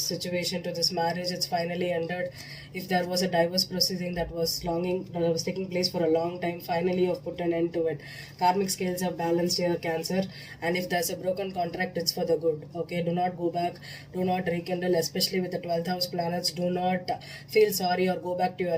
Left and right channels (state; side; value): identical; both; correlation 1.00